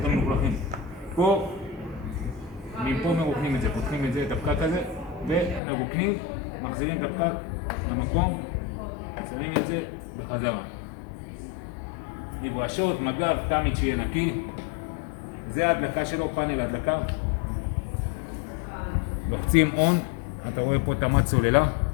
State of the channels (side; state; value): right; drops out; at 5.6 s